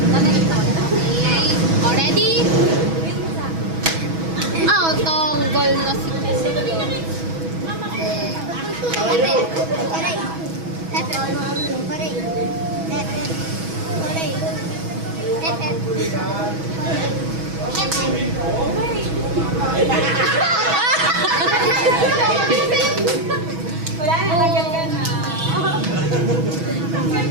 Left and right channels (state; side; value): late; left; 6.2 ms